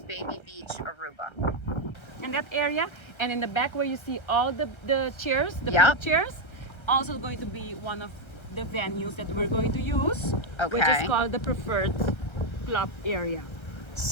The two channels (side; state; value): right; late; 1.3 ms